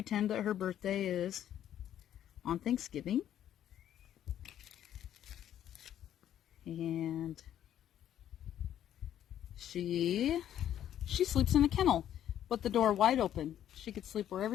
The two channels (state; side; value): quieter; right; 10.9 dB